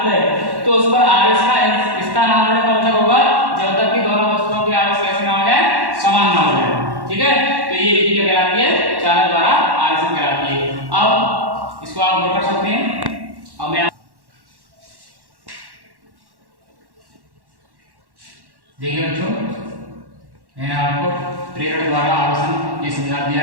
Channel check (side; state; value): left; late; 1.1 ms